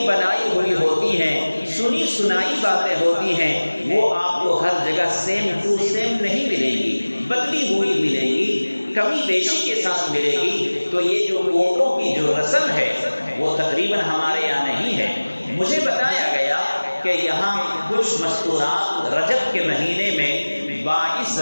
بنائی ہوئی ہوتی ہیں، سنی سنائی باتیں ہوتی ہیں، وہ آپ کو ہر جگہ سیم ٹو سیم نہیں ملے گی، بدلی ہوئی ملے گی، کمی بیشی کے ساتھ ملے گی۔ تو یہ جو کوٹوں کی جو رسم ہے وہ تقریباً ہمارے یہاں نہیں ہے۔ مجھے بتایا گیا کہ یہاں کچھ مستورات رجب کے مہینے میں 22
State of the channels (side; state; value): both; inverted; correlation -1.00